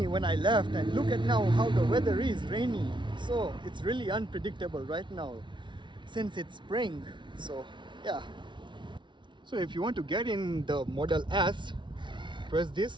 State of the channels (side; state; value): left; late; 0.23 ms